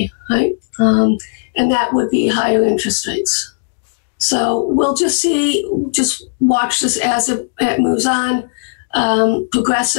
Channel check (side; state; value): right; silent; 69 dB below the other